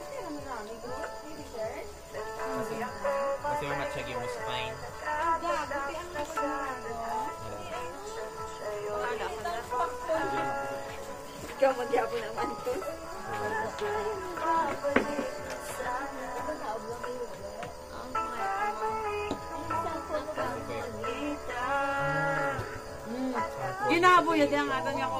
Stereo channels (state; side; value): identical; both; correlation 1.00